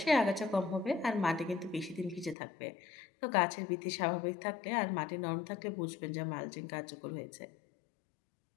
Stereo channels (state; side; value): drops out; right; at 2.4 s